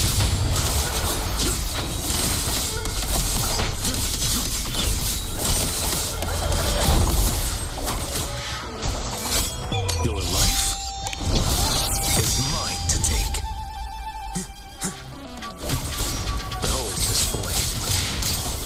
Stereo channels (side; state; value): both; identical; correlation 1.00